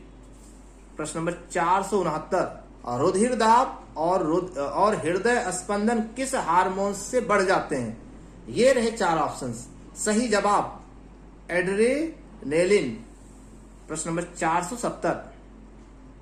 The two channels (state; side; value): identical; both; correlation 1.00